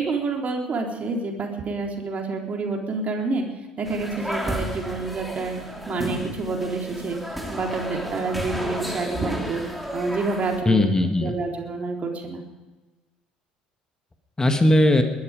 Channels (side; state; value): both; normal; correlation 0.71